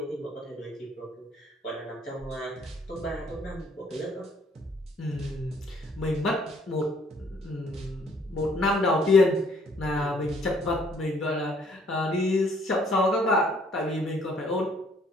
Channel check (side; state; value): both; normal; correlation 0.63